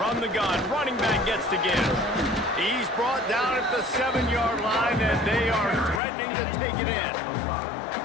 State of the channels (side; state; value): right; drops out; at 6.0 s